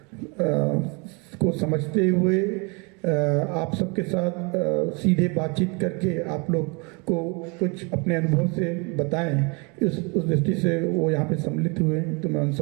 को समझते हुए आप सबके साथ सीधे बातचीत करके आप लोग को कुछ अपने अनुभव से बताएं। उस दृष्टि से वो यहाँ पे सम्मिलित हुए, तो मैं उन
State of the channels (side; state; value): left; quieter; 31.0 dB